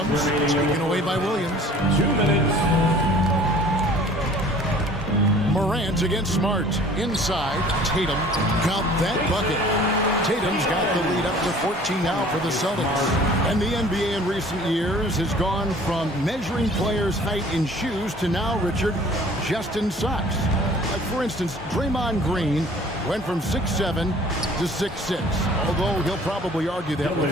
Taken away by Williams. 2 minutes. Morant against Smart. Inside, Tatum got that bucket. Tatum's got the lead up to 14 now for the Celtics. And the NBA in recent years has gone from measuring players' height in shoes to now, Richard, just in socks. Like, for instance, Draymond Green went from 6'7" to 6'6", although he'll probably argue that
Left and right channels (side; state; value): both; normal; correlation 0.50